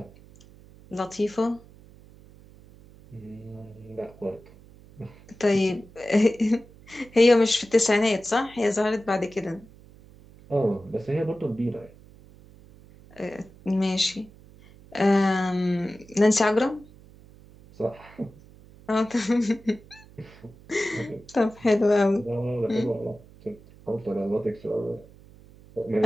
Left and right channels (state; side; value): noise; right; hum, 23 dB below the sound